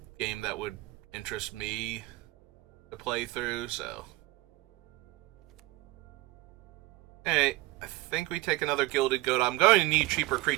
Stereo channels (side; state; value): left; quieter; 19.2 dB